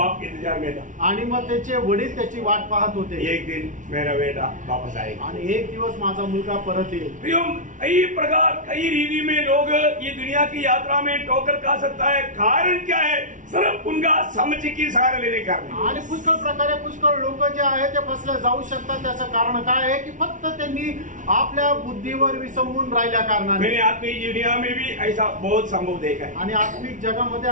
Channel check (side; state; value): left; late; 0.37 ms